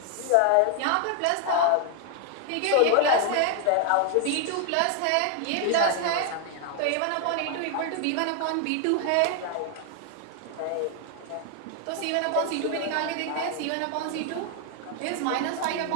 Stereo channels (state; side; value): different; both; correlation 0.00